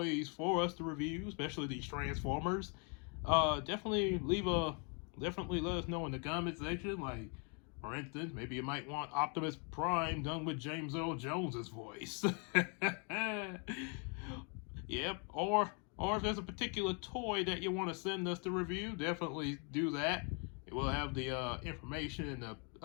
for us to review, especially these Transformers, definitely let us know in the comment section. Like, for instance, maybe you might want Optimus Prime done with James Earl Jones's voice. Yep. Or if there's a particular toy that you want to send us to review, definitely do that. We'll have the information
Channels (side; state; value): right; quieter; 36.9 dB